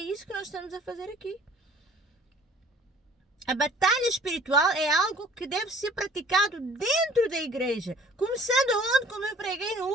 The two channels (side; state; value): both; normal; correlation 0.53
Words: isso que nós estamos a fazer aqui. A batalha espiritual é algo que deve ser praticado dentro da igreja. Começando onde, como eu preguei no